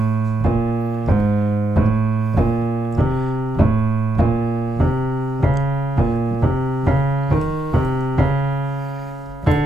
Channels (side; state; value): both; normal; correlation 0.81